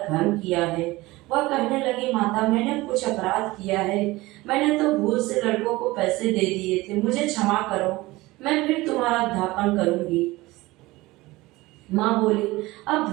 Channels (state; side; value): quieter; left; 20.1 dB